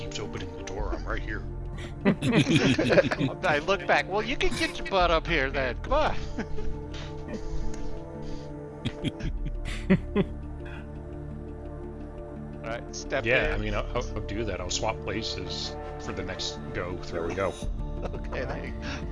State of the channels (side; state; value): both; identical; correlation 1.00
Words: opening the door. I'm right here. I look back. Well, you can get your butt up here then. Come on. All right, step Yeah, in. I mean, I'll do that. I'll swap places for the next go through. There we go. Okay, then.